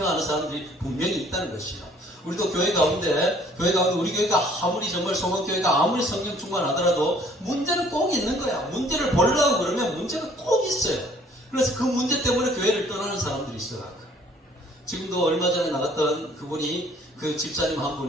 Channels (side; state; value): both; normal; correlation 0.58